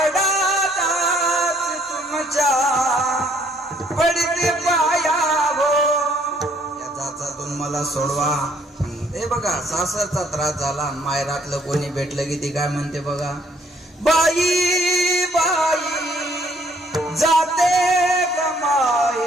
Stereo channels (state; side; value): normal; both; correlation 0.64